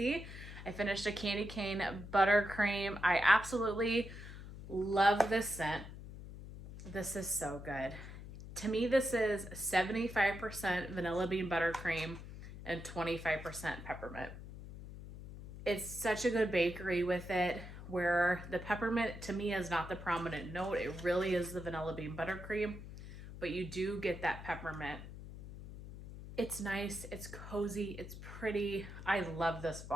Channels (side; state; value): left; noise; hum, 12 dB below the sound